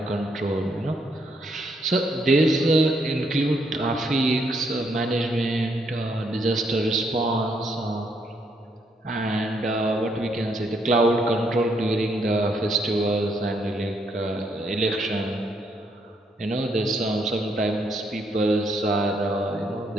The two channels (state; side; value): normal; both; correlation 0.73